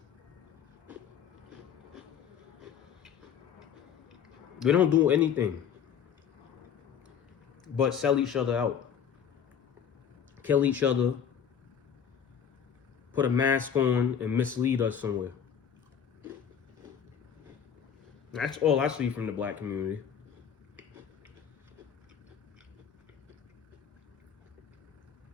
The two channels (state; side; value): quieter; right; 8.0 dB